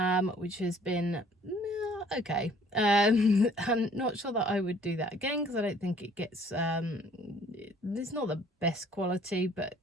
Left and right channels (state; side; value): normal; both; correlation 0.57